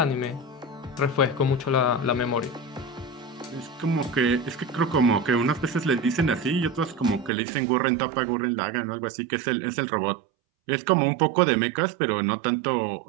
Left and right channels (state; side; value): drops out; left; at 7.3 s